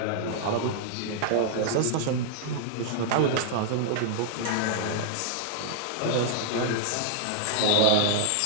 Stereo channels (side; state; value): both; different; correlation -0.01